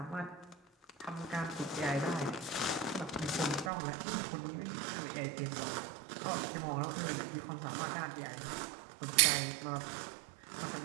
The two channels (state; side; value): drops out; left; at 3.7 s